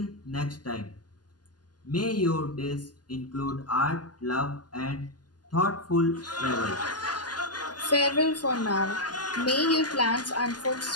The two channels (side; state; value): right; late; 0.70 ms